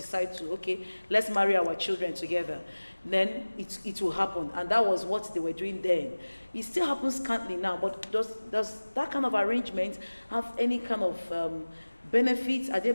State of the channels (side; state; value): both; inverted; correlation -1.00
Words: to, okay, let's marry our children together. Then it will happen, and that was what they were doing then. It still happens currently now, but does that kind of arrangement have any kind of benefits? Are there